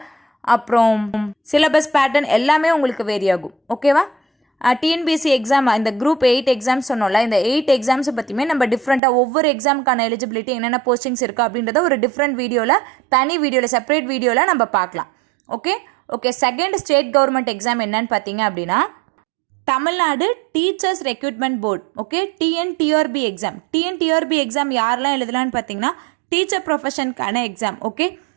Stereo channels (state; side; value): drops out; left; at 9.0 s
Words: அப்புறம் சிலபஸ் பேட்டர்ன் எல்லாமே உங்களுக்கு வேரி ஆகும். ஓகேவா? TNBSC எக்ஸாம், இந்த Group 8 எக்ஸாம்ஸ் சொன்னோம்ல, இந்த 8 எக்ஸாம்ஸை பற்றியுமே நம்ம டிஃப்ரெண்ட்டாக ஒவ்வொரு எக்ஸாமுக்கான எலிஜிபிலிட்டி என்னென்ன போஸ்டிங்ஸ் இருக்குது அப்படின்றத ஒரு டிஃப்ரெண்ட் வீடியோவில், தனி வீடியோவில், செப்பரேட் வீடியோவில் நம்ம பார்க்கலாம். Okay, second state government exam என்னன்னு பார்த்தீங்க அப்படின்னா Tamil Nadu teachers recruitment board. Okay, TNTRB exam. TNTRB exam யாரெல்லாம் எழுதலான்னு பார்த்தீங்கன்னா டீச்சர் ப்ரொஃபஷனுக்கான எக்ஸாம். ஓகே,